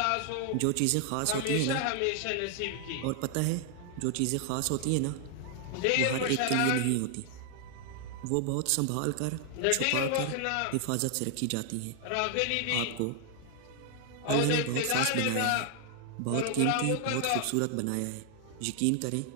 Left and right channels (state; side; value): different; both; correlation 0.00